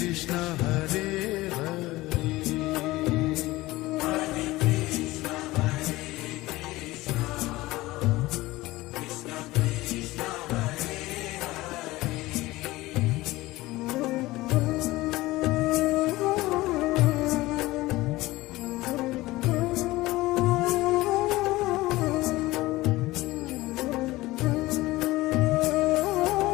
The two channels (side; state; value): right; quieter; 18.9 dB